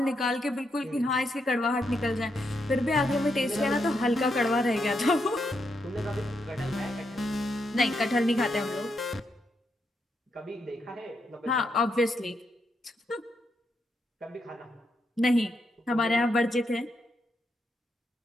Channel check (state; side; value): normal; both; correlation 0.81